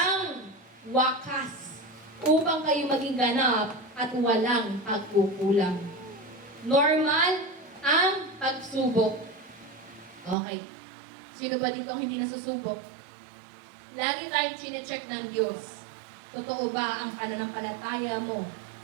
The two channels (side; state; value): left; drops out; at 10.4 s